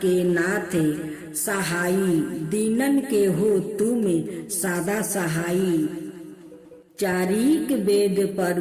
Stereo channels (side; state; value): both; identical; correlation 1.00